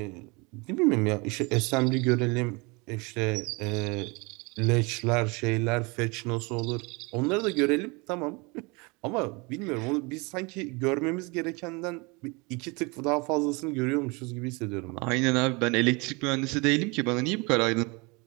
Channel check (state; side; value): quieter; left; 28.1 dB